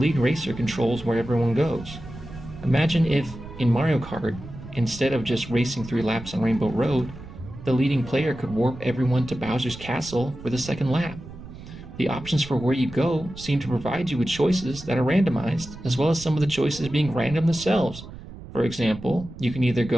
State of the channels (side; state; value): right; noise; rumble, 14 dB below the sound